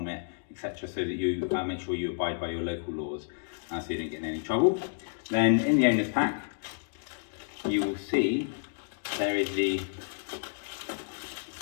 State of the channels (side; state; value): right; silent; digital silence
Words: etc., so that you make sure you abide by your local laws so you don't get in any trouble. Then in the owner's pack, you will see there is the